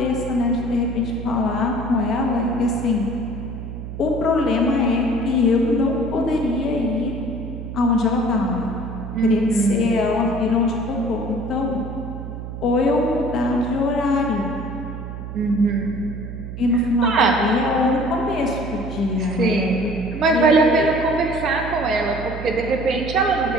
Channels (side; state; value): right; noise; hum, 9 dB below the sound